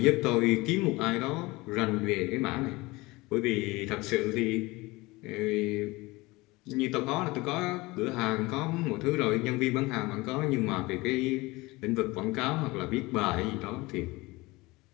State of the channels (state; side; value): quieter; right; 22.1 dB